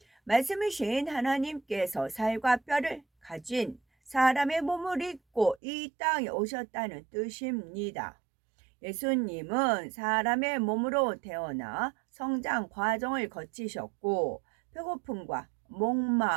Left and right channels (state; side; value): drops out; left; at 5.6 s